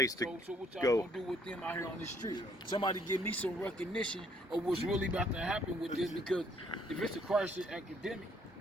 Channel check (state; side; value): normal; both; correlation 0.65